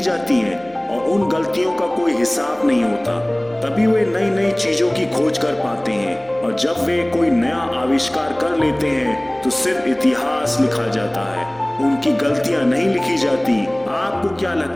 हैं और उन गलतियों का कोई हिसाब नहीं होता। तभी वे नई नई चीजों की खोज कर पाते हैं, और जब वे कोई नया आविष्कार कर लेते हैं तो सिर्फ इतिहास लिखा जाता है, उनकी गलतियां नहीं लिखी जाती। आपको क्या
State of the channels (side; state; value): right; noise; hum, 27 dB below the sound